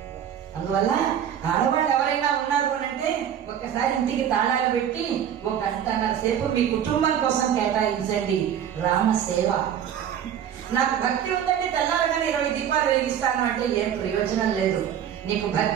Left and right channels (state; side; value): quieter; left; 9.5 dB